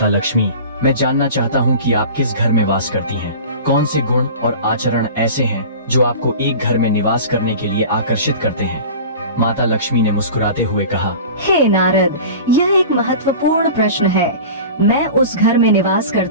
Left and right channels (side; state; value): both; inverted; correlation -0.36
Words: लक्ष्मी, मैं जानना चाहता हूँ कि आप किस घर में वास करती हैं। कौन से गुण और आचरण ऐसे हैं जो आपको एक घर में निवास करने के लिए आकर्षित करते हैं। माता लक्ष्मी ने मुस्कुराते हुए कहा, हे नारद, यह एक महत्वपूर्ण प्रश्न है। मैं उस घर में निवास